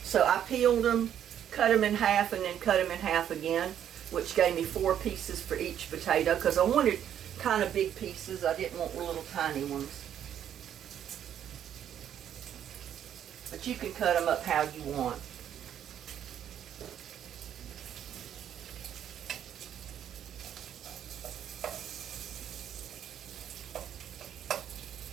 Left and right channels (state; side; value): quieter; left; 9.9 dB